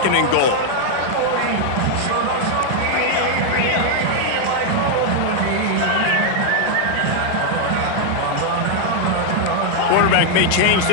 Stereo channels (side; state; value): both; different; correlation 0.00